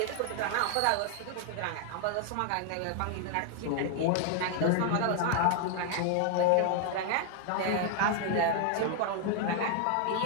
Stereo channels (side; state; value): both; different; correlation 0.00